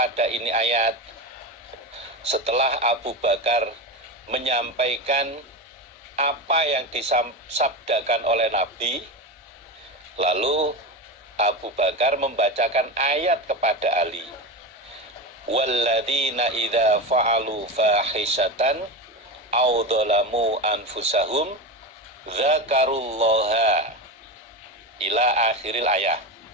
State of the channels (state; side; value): normal; both; correlation 0.20